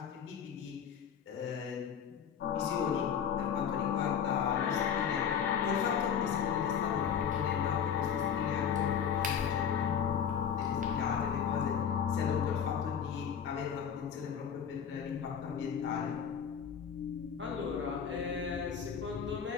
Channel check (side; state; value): right; quieter; 7.8 dB